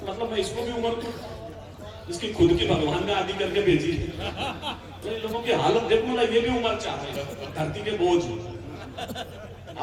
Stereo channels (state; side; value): identical; both; correlation 1.00